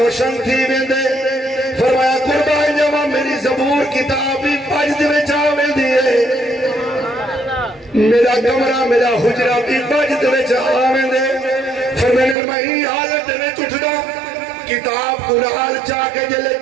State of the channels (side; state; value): left; drops out; at 12.4 s